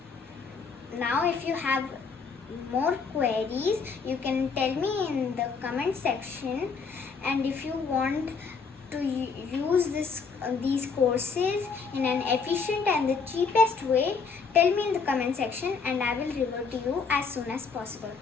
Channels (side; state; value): right; quieter; 5.2 dB